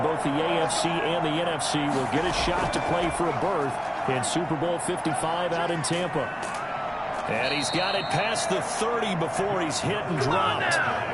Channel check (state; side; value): identical; both; correlation 1.00